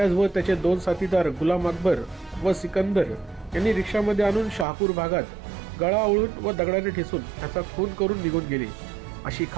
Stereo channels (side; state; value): left; drops out; at 4.7 s